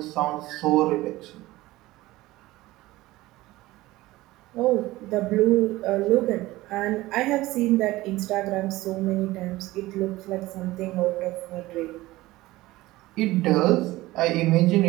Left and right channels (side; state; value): left; quieter; 18.2 dB